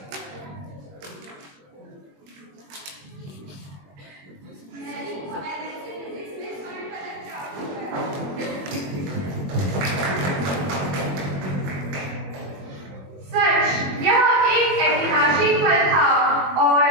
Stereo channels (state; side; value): late; left; 21 ms